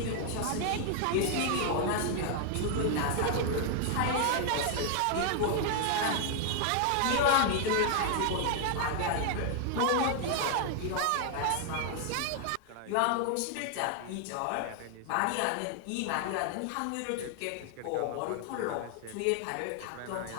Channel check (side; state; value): both; different; correlation 0.00